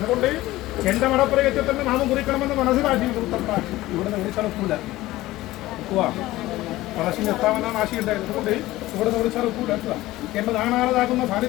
എന്റെ മടപ്പുറയത്തിൽ തന്നെ നാമം കുറിക്കണമെന്ന് മനസ്സിലാക്കി ഇവിടെ നിന്ന് വിളിച്ചാൽ ഒക്കൂല ഒക്കുക മനസ്സിന് എത്താമെന്നാണ് ആശയുണ്ടായിരുന്നു. അതുകൊണ്ട് ഇവിടെ നിന്ന് വിളിച്ചാൽ ഒക്കൂല എന്റെ നാണാളതാകുന്ന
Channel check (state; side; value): quieter; right; 17.3 dB